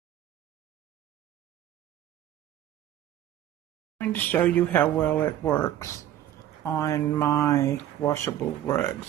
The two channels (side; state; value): left; quieter; 12.0 dB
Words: I'm going to show you how well it works on my washable